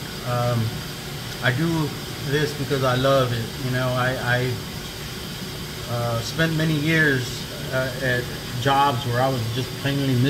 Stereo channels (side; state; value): both; identical; correlation 1.00